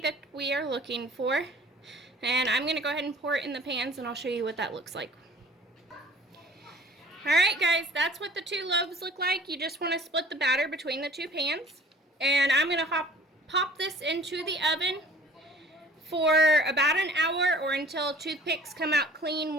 we are looking for. And I'm going to go ahead and pour it in the pans and I'll show you what that looks like. Alright guys, that's what the 2 loaves look like. You just want to split the batter between the 2 pans. And I'm going to pop this into the oven for about an hour or until toothpicks come out clean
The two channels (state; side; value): normal; both; correlation 0.50